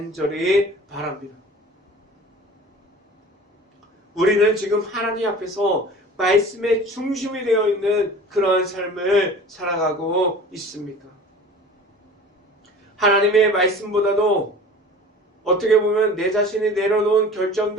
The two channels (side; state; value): both; normal; correlation 0.41